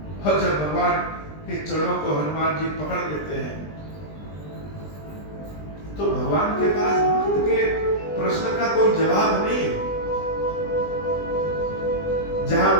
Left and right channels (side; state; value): right; late; 20 ms